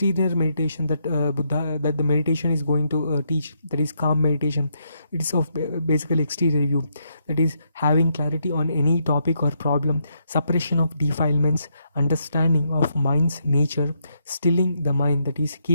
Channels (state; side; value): inverted; both; correlation -0.78